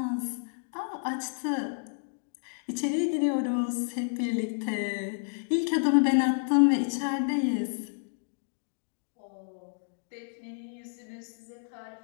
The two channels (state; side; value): silent; right; digital silence